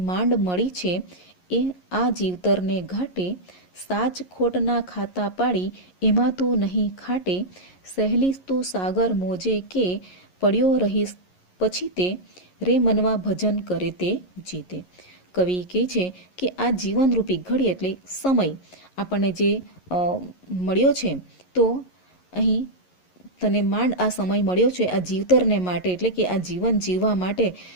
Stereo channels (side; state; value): right; late; 11 ms